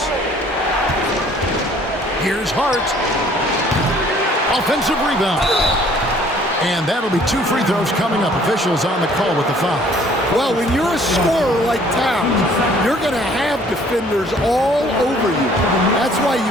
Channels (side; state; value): both; normal; correlation 0.57